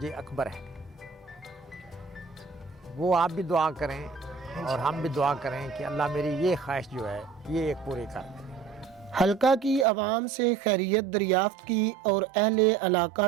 اکبر ہے۔ وہ آپ بھی دعا کریں اور ہم بھی دعا کریں کہ اللہ میری یہ خواہش جو ہے یہ ایک پوری کر دے۔ حلقہ کی عوام سے خیریت دریافت کی اور اہل علاقہ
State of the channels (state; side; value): drops out; left; at 9.9 s